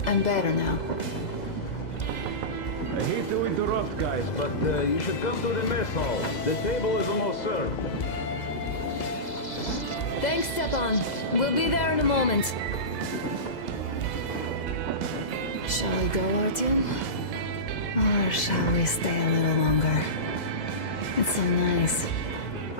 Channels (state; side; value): late; right; 2.0 ms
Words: I'm better now. I hate to interrupt, guys, but you should come to the mess hall. The table is almost served. Thanks, Stepan. We'll be there in a moment. Shall we go, Artyom? Or shall we stay a little longer? It's so nice.